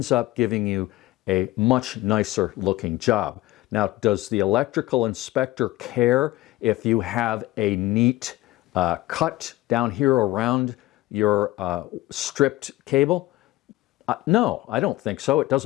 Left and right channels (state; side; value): quieter; right; 17.6 dB